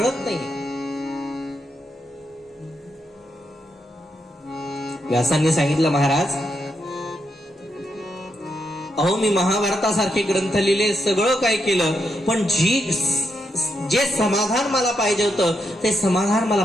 नाही. व्यासांनी सांगितलं, महाराज, अहो मी महाभारतासारखे ग्रंथ लिहिले, सगळं काय केलं, पण जे समाधान मला पाहिजे होतं ते समाधान मला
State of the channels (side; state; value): both; normal; correlation 0.82